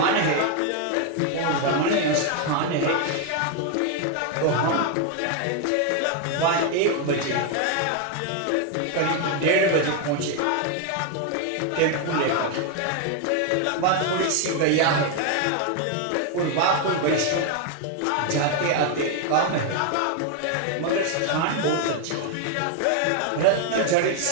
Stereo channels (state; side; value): different; both; correlation 0.01